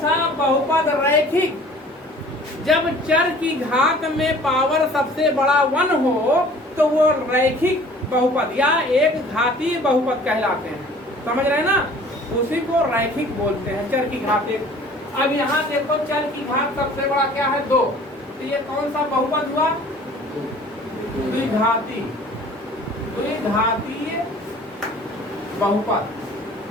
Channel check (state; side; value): normal; both; correlation 0.49